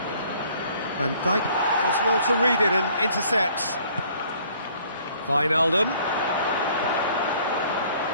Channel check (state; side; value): inverted; both; correlation -0.59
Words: Van Dijk does well to read it and intercepts. Wijnaldum.